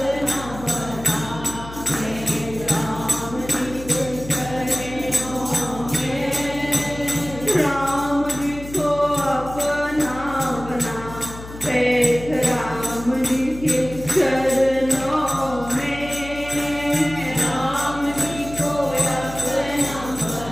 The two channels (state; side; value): noise; left; hum, 13 dB below the sound